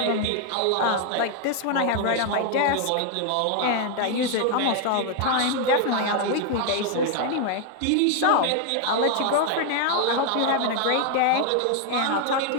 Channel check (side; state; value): both; different; correlation 0.00